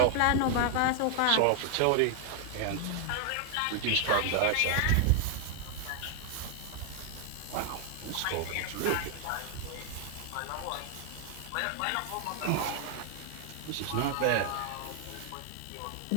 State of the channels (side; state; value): both; different; correlation 0.00